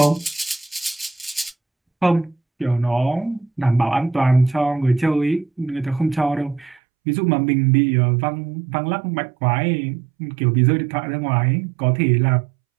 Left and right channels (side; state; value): left; drops out; at 6.8 s